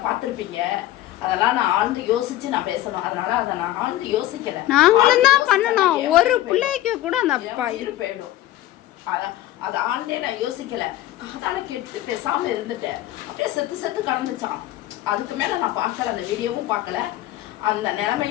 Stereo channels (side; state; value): right; quieter; 14.6 dB